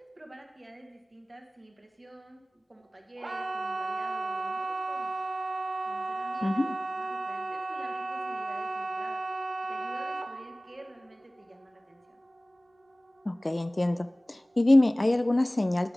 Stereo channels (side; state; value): both; normal; correlation 0.98